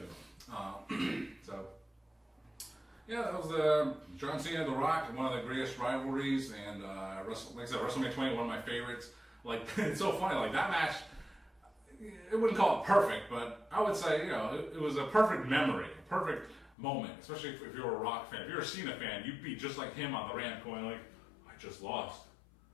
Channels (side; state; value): right; drops out; at 16.7 s